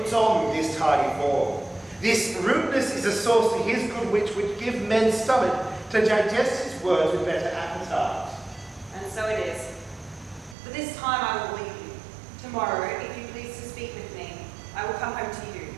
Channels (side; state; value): left; drops out; at 10.6 s